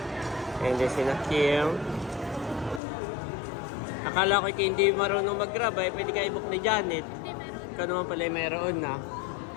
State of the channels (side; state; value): right; drops out; at 2.8 s